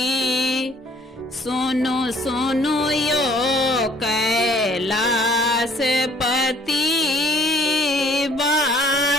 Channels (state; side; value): normal; both; correlation 0.58